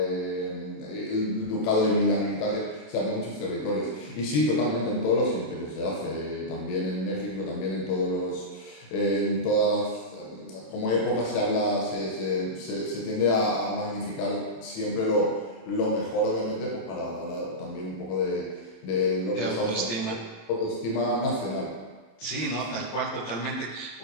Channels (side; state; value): right; late; 27 ms